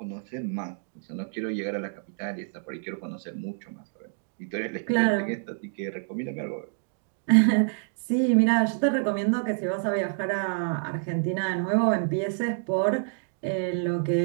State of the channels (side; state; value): left; silent; digital silence